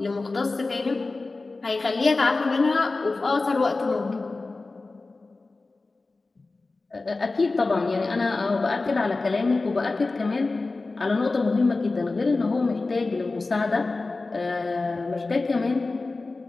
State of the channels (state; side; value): quieter; right; 3.5 dB